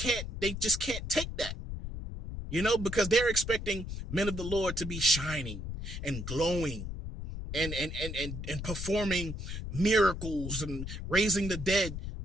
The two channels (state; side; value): noise; left; rumble, 6 dB below the sound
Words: take that, because they're expecting men of the Lord to be shining and glowing and performing miracles and raising the dead.